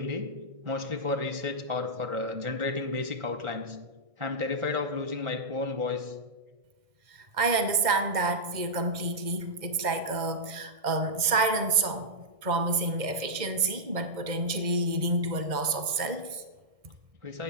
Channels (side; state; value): left; late; 1.6 ms